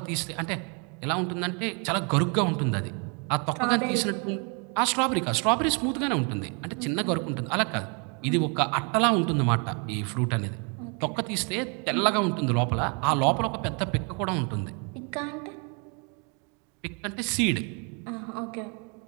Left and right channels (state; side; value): quieter; left; 35.3 dB